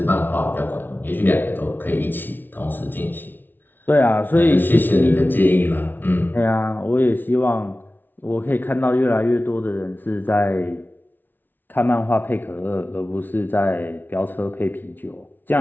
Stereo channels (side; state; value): right; late; 0.091 ms